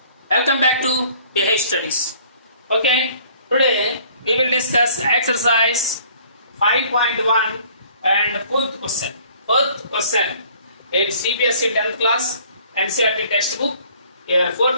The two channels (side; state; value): both; inverted; correlation -0.56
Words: Welcome back to BH Studies. Okay, today we will discuss exercise 5.1 and fourth question. Fourth question in CBSE 10th class NCERT textbook. Here,